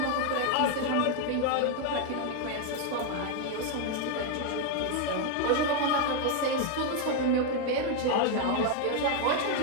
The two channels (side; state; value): both; different; correlation 0.01